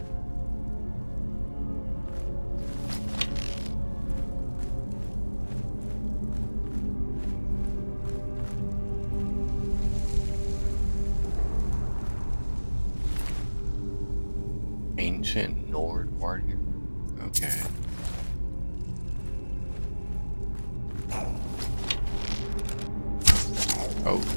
Ancient Nord warrior. Okay. Oh,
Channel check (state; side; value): inverted; both; correlation -1.00